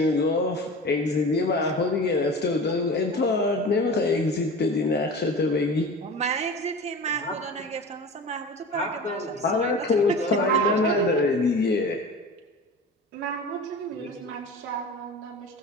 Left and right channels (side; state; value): both; normal; correlation 0.35